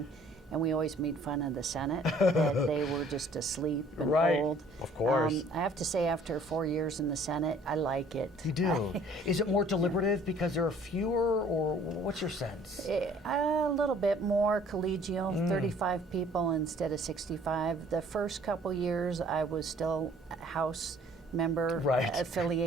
And we always made fun of the Senate, that they were just asleep and old. Of course. I have to say, after 4 years in the Senate, I like it. You do? Is it more deliberative because there are fewer, or what's your sense? A little bit more collegial, 35 people instead of 65. The first couple years, I was still a House member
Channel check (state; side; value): normal; both; correlation 0.56